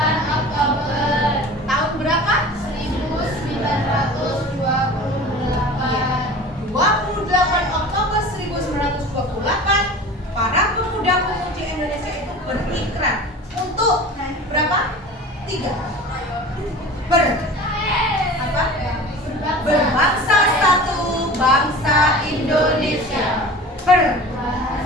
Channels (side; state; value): both; normal; correlation 0.38